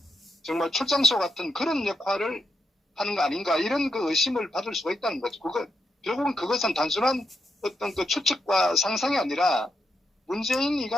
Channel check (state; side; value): normal; both; correlation 0.82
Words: 정말 출장소 같은 그런 역할을 하는 거 아닌가 이런 그 의심을 받을 수가 있다는 거죠. 결국은 그것은 단순한 어떤 그 추측과 상상이 아니라